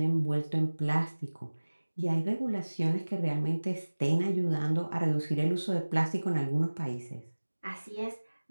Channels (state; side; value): inverted; both; correlation -1.00